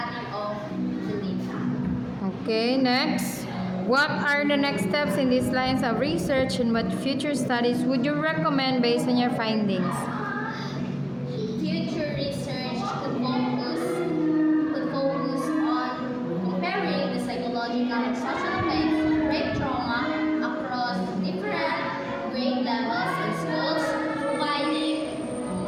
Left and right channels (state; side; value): identical; both; correlation 1.00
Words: of the data. Okay, next. What are the next steps in these lines of research and what future studies would you recommend based on your findings? Future research could focus on comparing the psychological and social effects of brain trauma across different grade levels in schools, providing